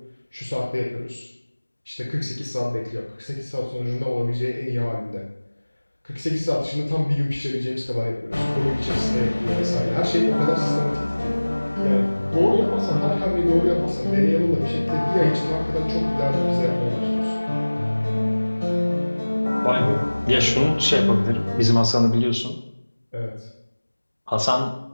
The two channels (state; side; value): inverted; both; correlation -1.00